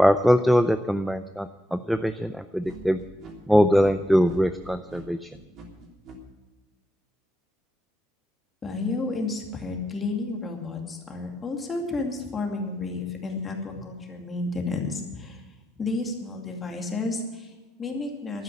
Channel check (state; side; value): normal; both; correlation 0.85